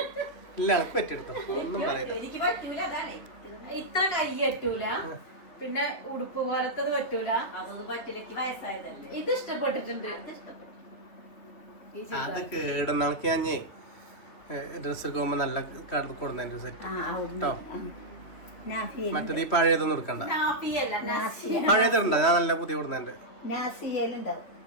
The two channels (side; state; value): right; late; 3.3 ms